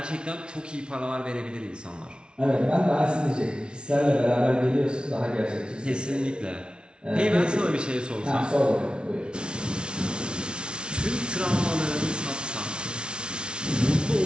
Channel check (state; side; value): late; left; 0.056 ms